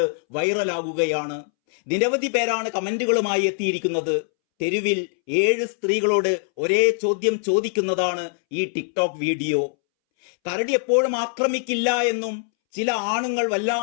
വൈറലാകുകയാണ്. നിരവധി പേരാണ് കമന്റുകളുമായി എത്തിയിരിക്കുന്നത്. തെരുവിൽ 7 സ്ത്രീകളോട് ഒരേ ചോദ്യം ചോദിക്കുന്നതാണ് ഈ ടിക്ടോക്ക് വീഡിയോ. കരടി എപ്പോഴും ആക്രമിക്കില്ല എന്നും ചില ആണുങ്ങൾ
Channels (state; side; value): silent; right; 64 dB below the other